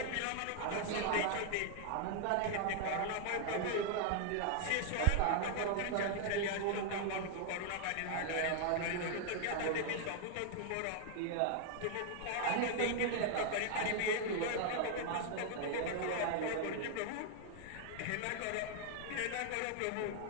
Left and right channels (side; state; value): both; different; correlation 0.00